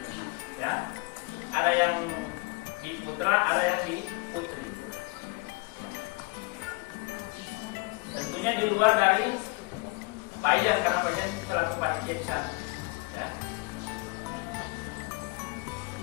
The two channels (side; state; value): right; quieter; 27.8 dB